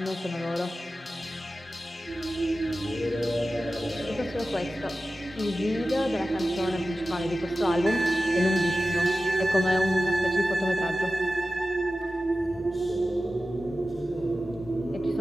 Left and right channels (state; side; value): normal; both; correlation 0.94